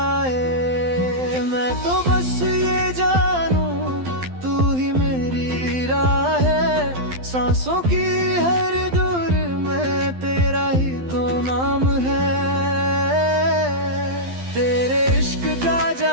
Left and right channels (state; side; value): late; left; 12 ms